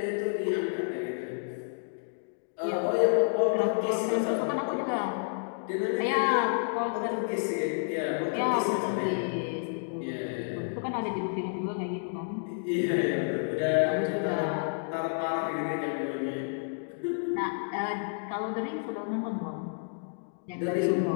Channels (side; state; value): right; silent; digital silence